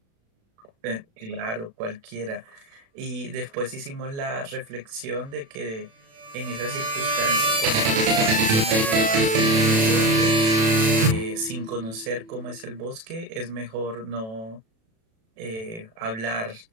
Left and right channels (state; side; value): late; left; 36 ms